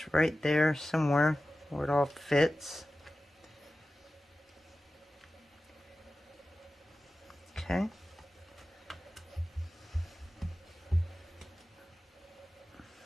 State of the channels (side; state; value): both; normal; correlation 0.95